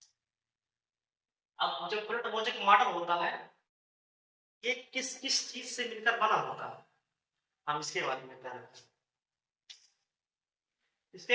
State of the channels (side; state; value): both; identical; correlation 1.00